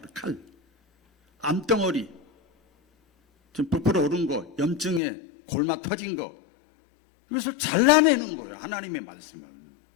그래, 칼. 암덩어리, 좀 부풀어 오른 거, 염증에 골마 터진 거, 이것을 잘라내는 거예요. 하나님의 말씀은.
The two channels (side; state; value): right; drops out; at 5.0 s